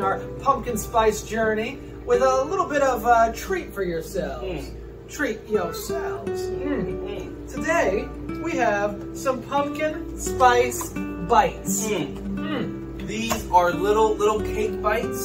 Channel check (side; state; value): both; identical; correlation 1.00